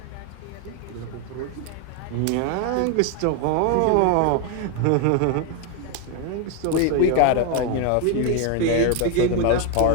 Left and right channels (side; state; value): both; different; correlation 0.01